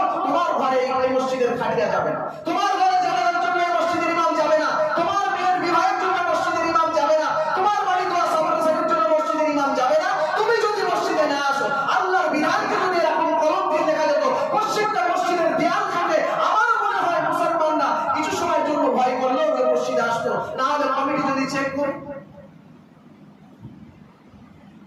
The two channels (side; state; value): both; identical; correlation 1.00